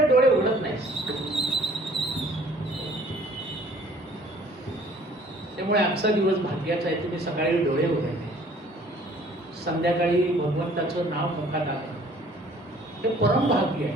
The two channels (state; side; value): normal; both; correlation 0.55